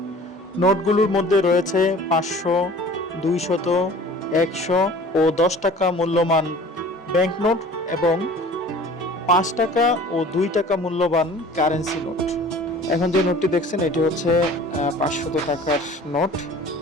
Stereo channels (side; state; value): both; normal; correlation 0.46